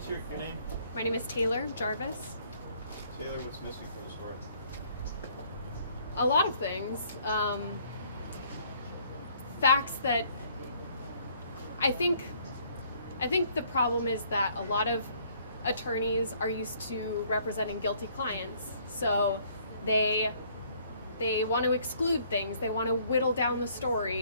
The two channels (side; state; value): both; inverted; correlation -0.62